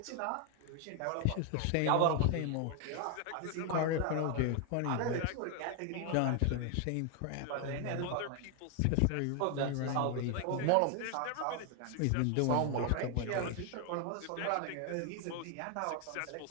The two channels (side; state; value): both; different; correlation 0.00